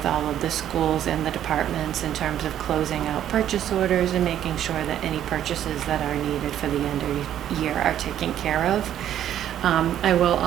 all of the schools and the departments in terms of closing out purchase orders and making sure that any purchases that are needed for the end of year are taken care of. I will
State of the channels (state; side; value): quieter; left; 10.9 dB